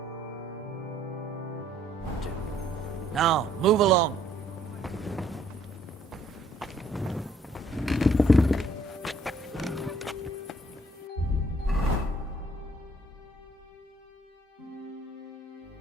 Now, move along.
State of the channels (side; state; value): both; normal; correlation 0.64